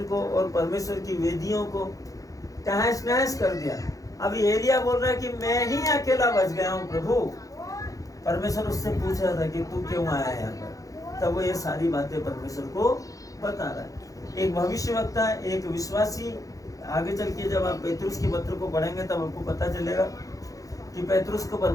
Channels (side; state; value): right; late; 0.17 ms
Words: को और परमेश्वर की वेदियों को तहस नहस कर दिया। अभी एलिया बोल रहा है कि मैं ही अकेला बच गया हूँ प्रभु। परमेश्वर उससे पूछ रहा था कि तू क्यों आया यहाँ पर? तब वो ये सारी बातें परमेश्वर को बता रहा है। एक भविष्यवक्ता, एक विश्वासी, आगे चल के जब आप पेतरुस के पत्र को पढ़ेंगे तब आपको पता चलेगा कि पेतरुस को